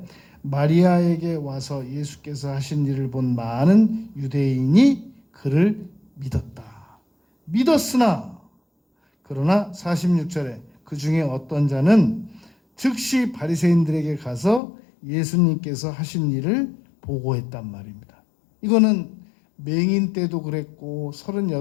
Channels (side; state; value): right; drops out; at 14.6 s